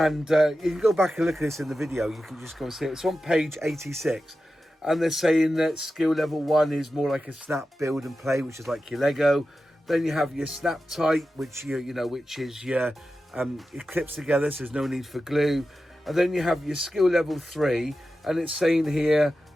you can go back and look at this in the video. You can just go and see it. It's on page 86. And they're saying that skill level 1 is more like a snap, build and play, which is like your Lego. Then you have your snap tight, which which is your it clips together, so there's no need for glue. And then you have your skill level 3, and it's saying here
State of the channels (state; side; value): normal; both; correlation 0.92